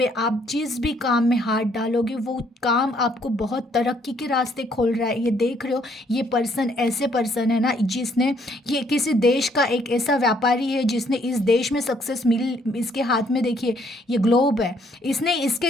आप जिस भी काम में हाथ डालोगे वो काम आपको बहुत तरक्की के रास्ते खोल रहा है। ये देख रहे हो, ये पर्सन ऐसे पर्सन है ना जिसने, ये किसी देश का एक ऐसा व्यापारी है जिसने इस देश में सक्सेस मिल, इसके हाथ में देखिए ये ग्लोब है, इसने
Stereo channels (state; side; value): normal; both; correlation 0.67